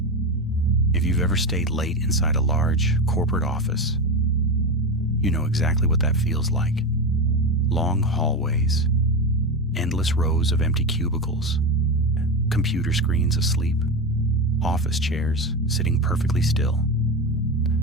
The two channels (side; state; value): both; normal; correlation 0.18